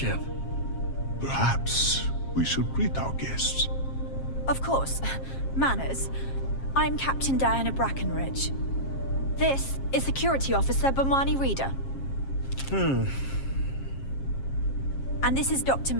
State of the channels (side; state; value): right; late; 7.4 ms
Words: Perhaps we should greet our guests. Of course. Manners. I'm Captain Diana Brackenridge. This is Security Officer Bomani Reader. And this is Dr.